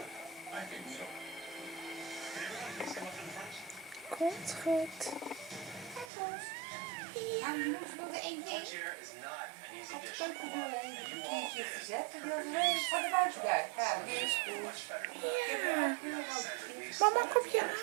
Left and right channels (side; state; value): left; drops out; at 6.1 s